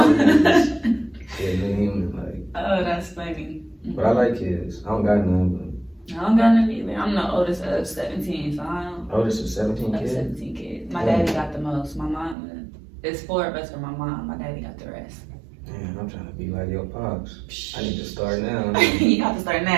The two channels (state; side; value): drops out; left; at 12.4 s